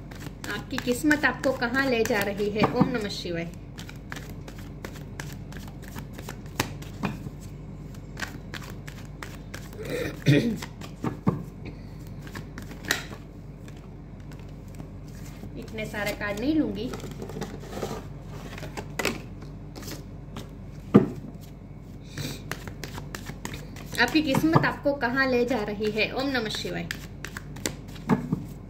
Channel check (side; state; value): both; identical; correlation 1.00